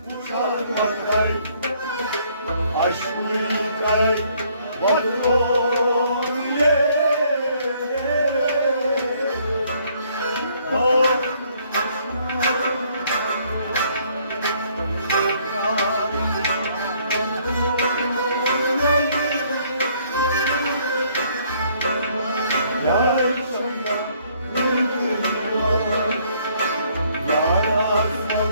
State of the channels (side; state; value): both; inverted; correlation -0.65